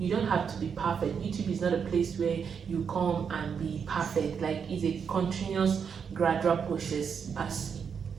don't have to be perfect. YouTube is not a place where you come and be perfect. Like, it's a continuous gradual process.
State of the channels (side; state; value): left; quieter; 6.7 dB